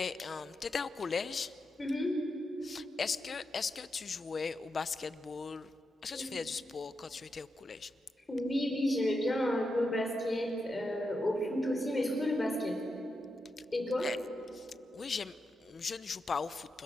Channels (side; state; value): both; normal; correlation 0.86